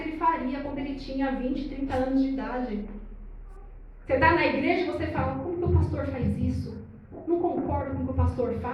faria quando ele tinha 20, 30 anos de idade. Você está na igreja e você fala: como que o pastor faz isso? Não concordo com o que o pastor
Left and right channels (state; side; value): identical; both; correlation 1.00